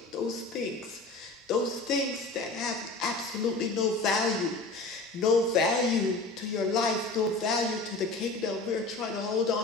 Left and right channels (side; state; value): right; quieter; 3.4 dB